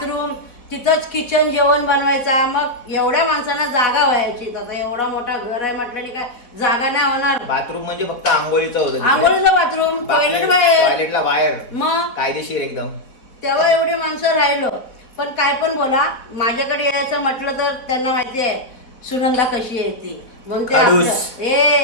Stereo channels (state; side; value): late; right; 4.1 ms